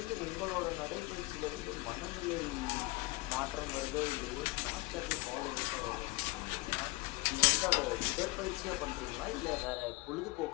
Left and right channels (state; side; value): quieter; right; 22.2 dB